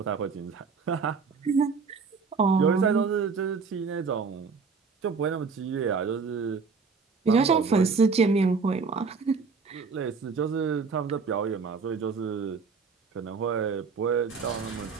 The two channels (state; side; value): quieter; left; 5.0 dB